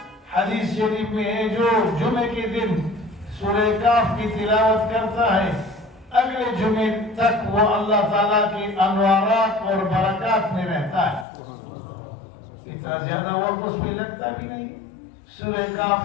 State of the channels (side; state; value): right; drops out; at 11.2 s